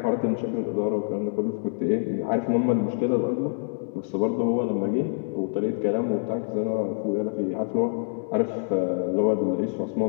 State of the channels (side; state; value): right; silent; digital silence